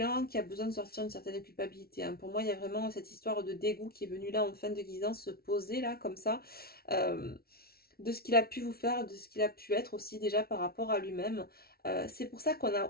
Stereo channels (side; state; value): right; late; 0.44 ms